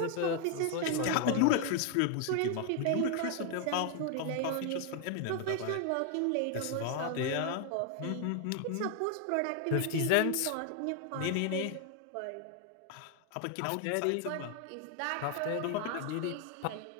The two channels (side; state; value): both; different; correlation 0.00